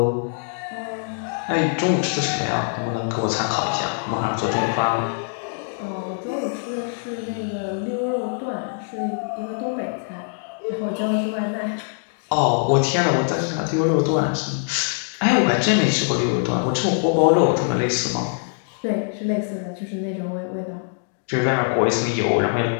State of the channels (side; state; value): right; silent; digital silence